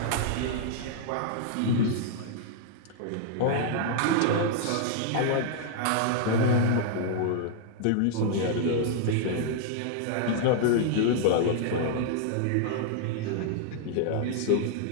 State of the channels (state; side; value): different; both; correlation -0.01